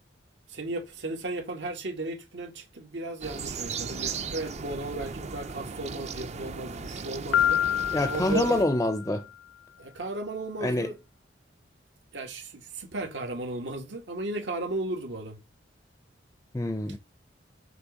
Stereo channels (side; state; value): both; normal; correlation 0.48